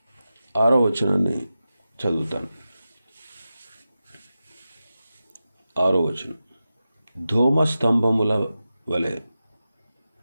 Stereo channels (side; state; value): both; inverted; correlation -0.93